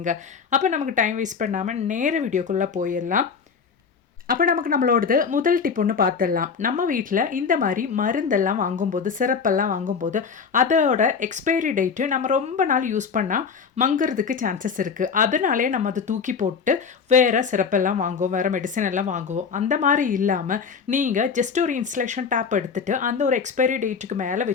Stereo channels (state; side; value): quieter; right; 5.9 dB